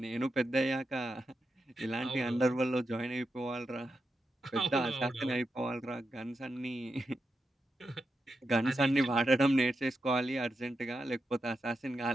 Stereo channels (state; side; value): normal; both; correlation 0.87